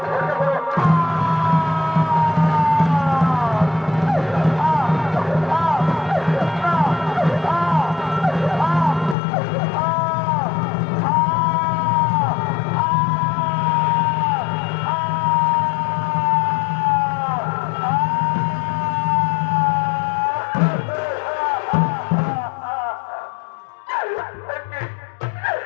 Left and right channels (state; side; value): drops out; right; at 9.2 s